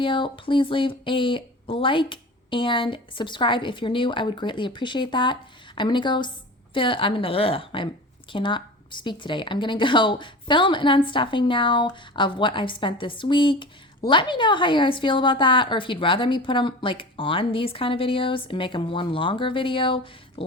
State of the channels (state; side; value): normal; both; correlation 0.34